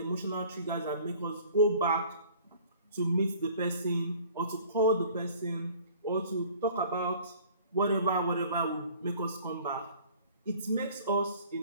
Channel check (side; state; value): both; inverted; correlation -0.50